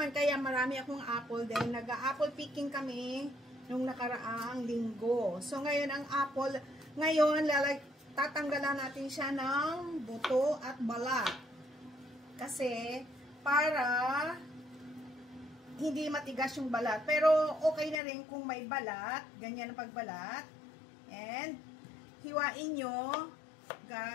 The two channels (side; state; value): right; drops out; at 18.0 s